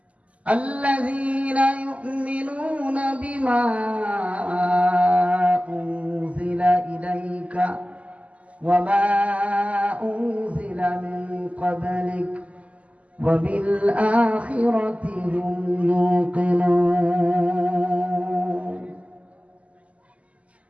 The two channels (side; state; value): left; late; 0.066 ms